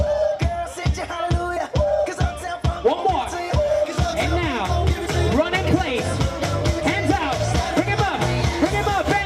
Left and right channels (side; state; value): both; identical; correlation 1.00